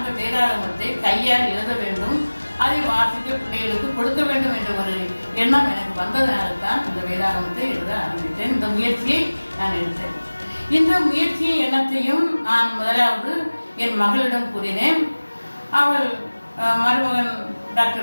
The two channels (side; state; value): both; inverted; correlation -1.00